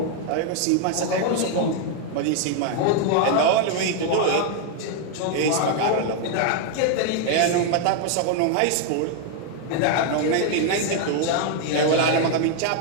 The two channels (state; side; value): different; both; correlation 0.00